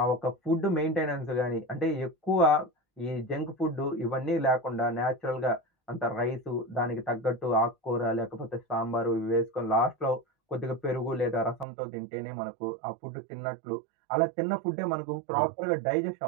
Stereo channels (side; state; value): left; drops out; at 11.7 s